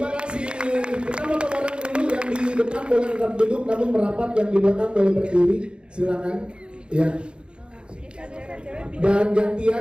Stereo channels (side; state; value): left; late; 0.054 ms